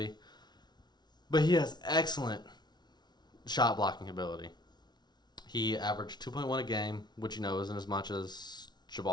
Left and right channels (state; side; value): late; right; 0.20 ms